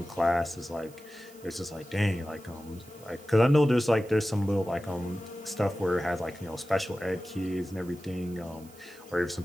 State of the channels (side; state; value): right; noise; hiss, 24 dB below the sound